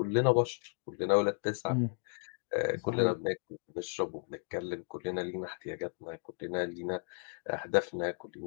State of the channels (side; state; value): right; silent; 55 dB below the other